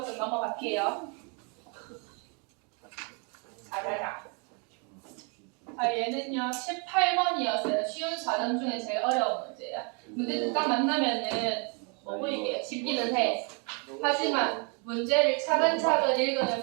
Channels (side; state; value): left; quieter; 35.3 dB